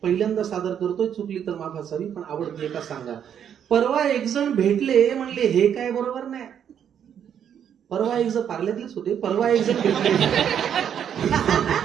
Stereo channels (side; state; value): left; quieter; 8.8 dB